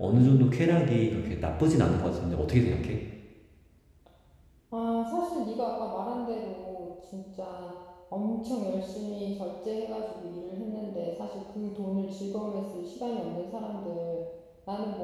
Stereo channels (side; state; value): both; identical; correlation 1.00